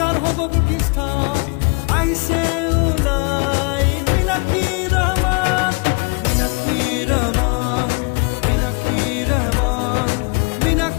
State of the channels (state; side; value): quieter; right; 33.0 dB